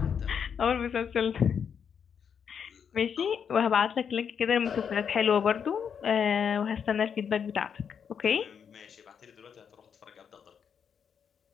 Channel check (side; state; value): right; quieter; 7.3 dB